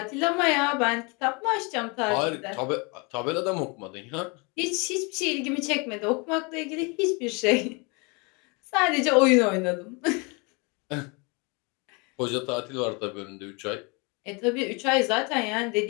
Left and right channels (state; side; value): quieter; right; 30.2 dB